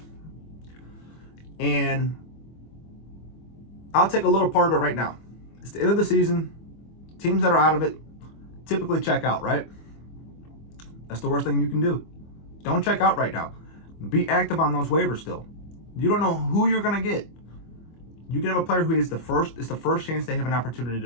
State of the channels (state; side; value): late; right; 25 ms